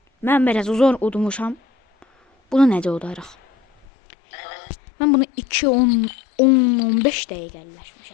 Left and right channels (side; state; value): right; drops out; at 3.9 s